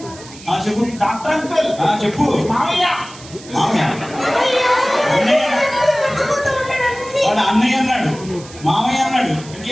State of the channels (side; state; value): right; noise; hiss, 18 dB below the sound